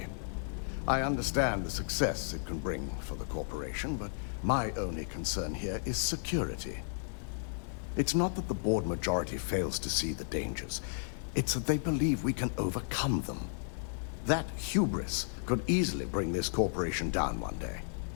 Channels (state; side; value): silent; right; digital silence